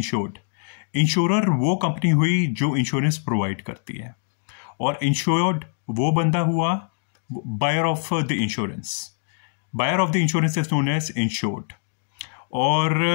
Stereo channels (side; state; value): right; silent; digital silence